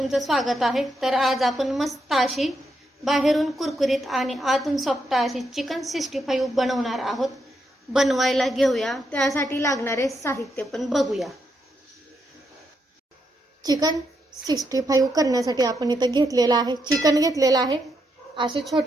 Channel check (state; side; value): normal; both; correlation 0.80